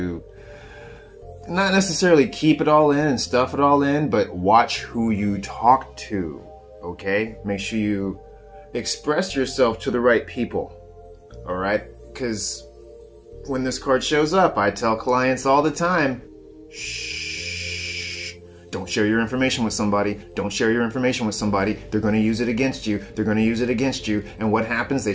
not necessarily keep it all in and stuff it all in, but watch who you talk to, okay? Make sure you express yourself to the right people, all right? Because when this card shows up, I tell clients all the time, shh. Don't share your information with somebody. Don't share your information with somebody. They're going to use it against you. They're going to use it against you. And what happens? They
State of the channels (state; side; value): identical; both; correlation 1.00